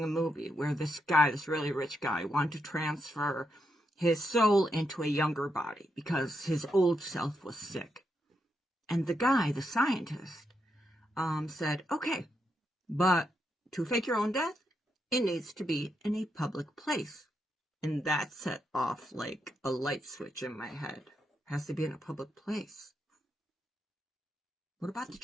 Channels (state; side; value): normal; both; correlation 0.82